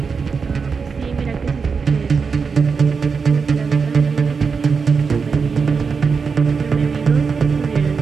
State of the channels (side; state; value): left; quieter; 5.4 dB